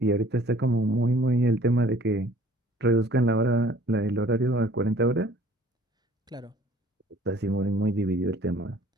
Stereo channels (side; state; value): both; normal; correlation 0.54